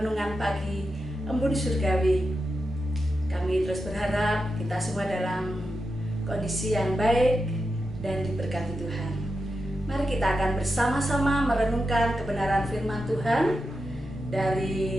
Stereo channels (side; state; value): both; normal; correlation 0.88